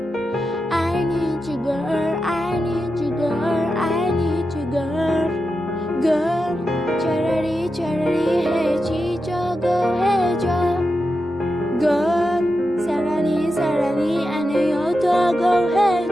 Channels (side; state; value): both; normal; correlation 0.89